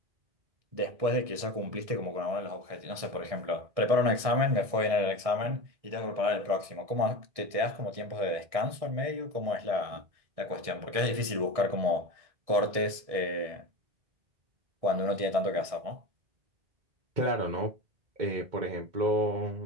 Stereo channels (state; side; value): late; left; 1.7 ms